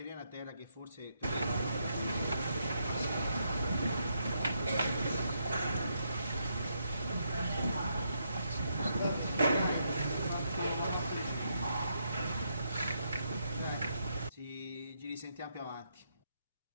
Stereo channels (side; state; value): both; inverted; correlation -0.78